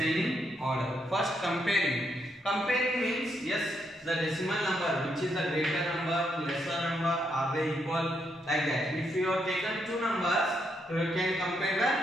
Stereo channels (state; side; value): normal; both; correlation 0.78